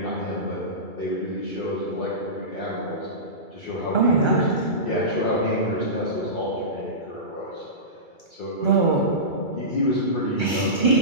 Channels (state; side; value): late; right; 2.3 ms